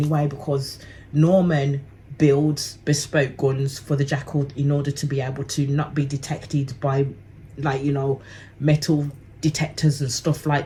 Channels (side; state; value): both; identical; correlation 1.00